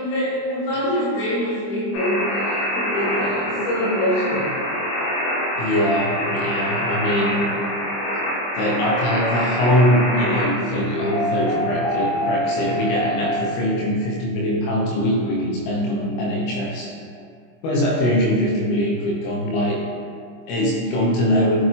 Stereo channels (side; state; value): right; late; 25 ms